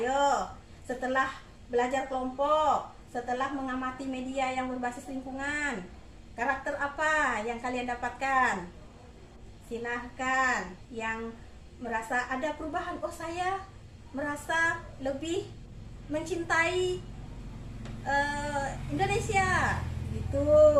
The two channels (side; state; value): both; identical; correlation 1.00